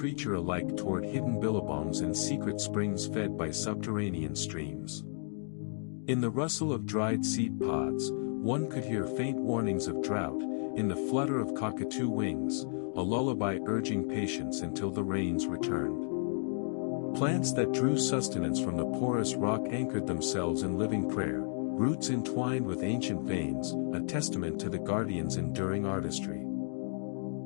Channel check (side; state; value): right; silent; digital silence